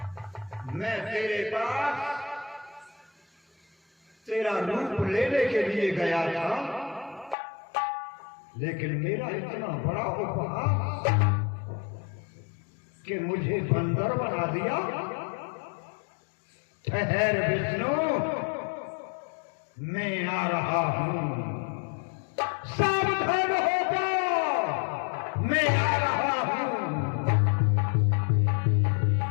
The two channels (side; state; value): right; drops out; at 7.4 s